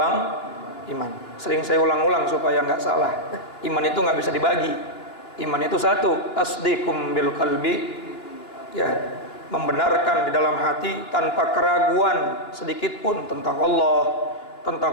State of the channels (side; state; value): right; late; 2.9 ms